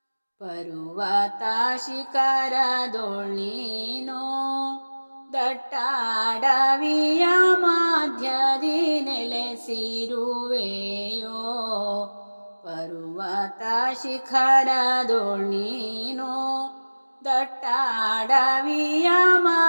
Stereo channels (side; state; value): both; inverted; correlation -1.00